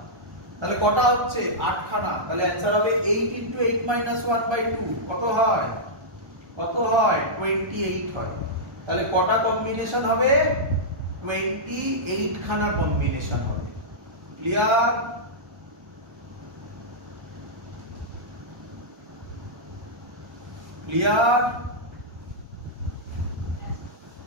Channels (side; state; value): left; late; 1.3 ms